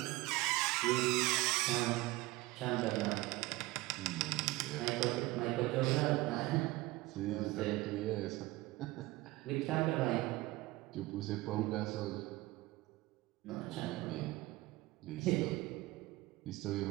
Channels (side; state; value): left; quieter; 19.8 dB